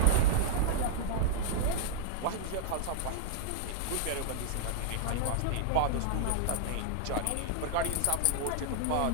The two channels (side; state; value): both; different; correlation 0.00